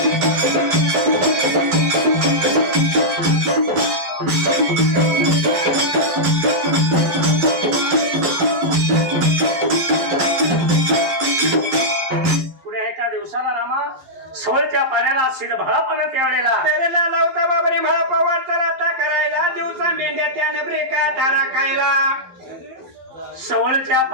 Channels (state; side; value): late; left; 11 ms